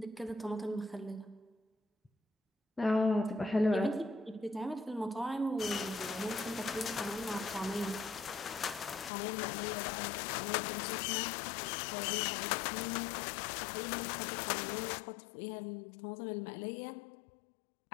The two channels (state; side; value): drops out; right; at 9.1 s